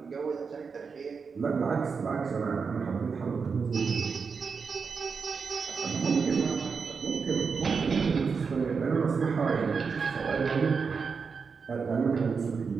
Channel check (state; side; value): quieter; left; 5.4 dB